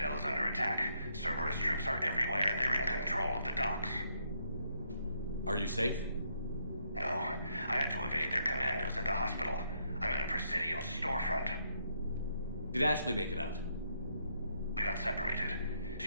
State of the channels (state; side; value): inverted; both; correlation -0.74